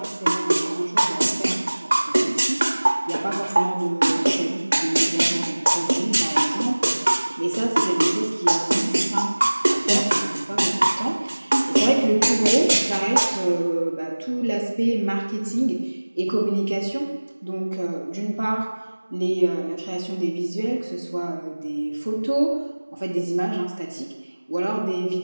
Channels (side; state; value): both; inverted; correlation -1.00